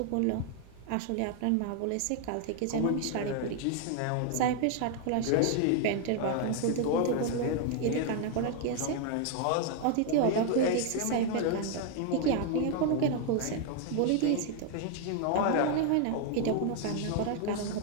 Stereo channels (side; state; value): both; different; correlation 0.00